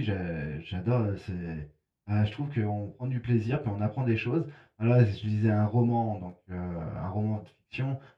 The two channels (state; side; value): identical; both; correlation 1.00